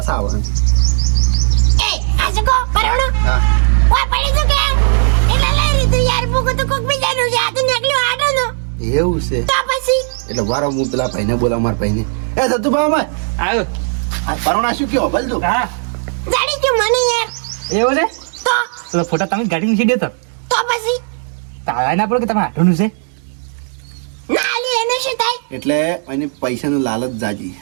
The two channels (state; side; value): silent; left; 64 dB below the other